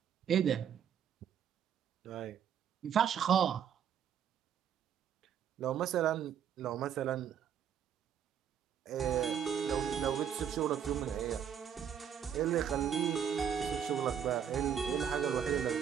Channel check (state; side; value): quieter; left; 8.5 dB